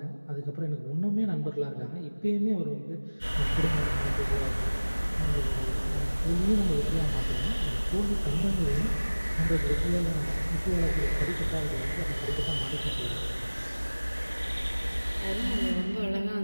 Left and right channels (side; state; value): both; inverted; correlation -1.00